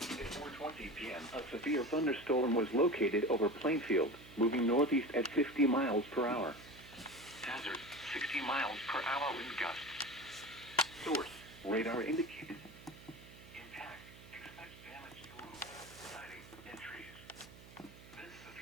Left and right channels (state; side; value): noise; right; hum, 19 dB below the sound